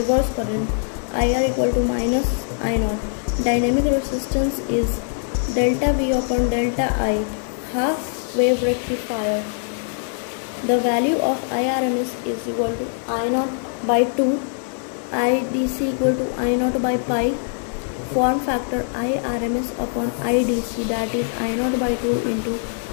current. IR equal to minus I naught. Dynamic resistance is delta V upon delta I, half wave rectifier. The value of IRMS is equal to I naught by 2, IDC equal to I naught by pi. Form factor IRMS upon IDC, that is I naught by 2 into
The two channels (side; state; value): right; silent; 64 dB below the other